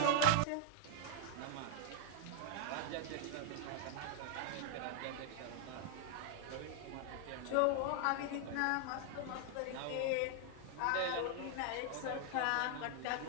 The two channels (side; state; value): both; different; correlation 0.00